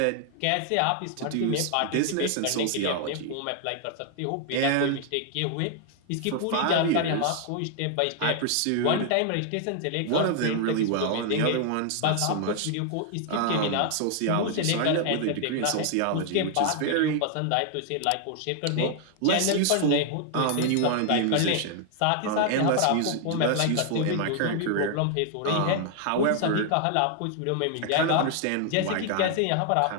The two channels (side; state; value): both; different; correlation 0.00